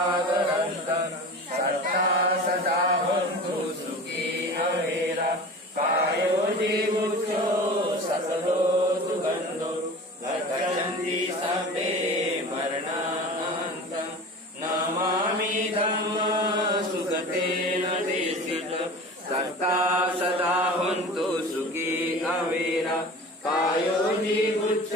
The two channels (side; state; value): both; normal; correlation 0.36